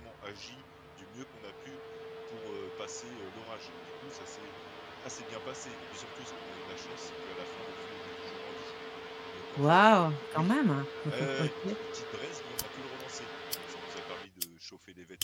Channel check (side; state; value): both; identical; correlation 1.00